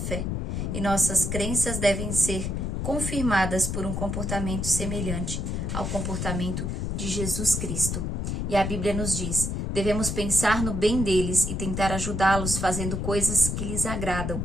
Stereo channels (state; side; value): noise; left; rumble, 2 dB below the sound